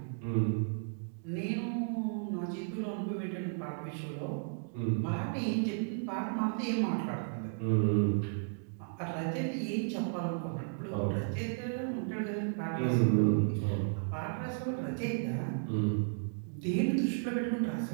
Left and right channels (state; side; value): silent; left; digital silence